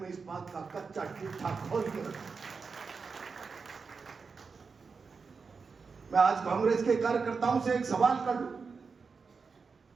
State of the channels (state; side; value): quieter; left; 5.0 dB